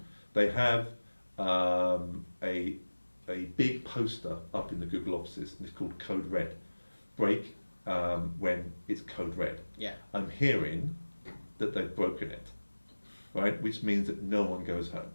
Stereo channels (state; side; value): inverted; both; correlation -1.00